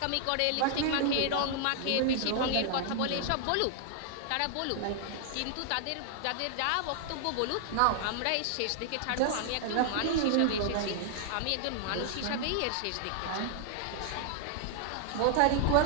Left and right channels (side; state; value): both; different; correlation 0.00